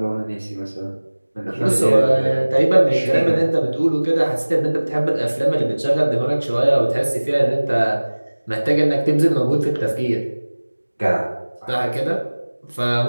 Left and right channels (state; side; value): inverted; both; correlation -1.00